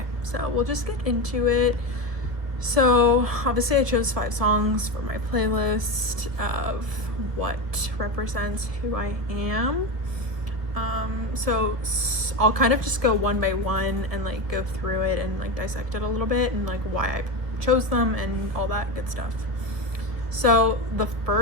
so we'll just get into it. So obviously I chose 5 songs for my playlist of what represents who I am. So I'll kind of just go one by one and like go through it and like dissect it a little bit and like why I chose them and all that good stuff. So the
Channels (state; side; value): late; left; 1.5 ms